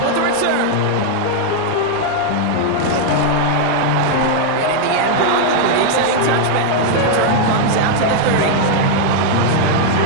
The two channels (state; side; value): different; both; correlation 0.00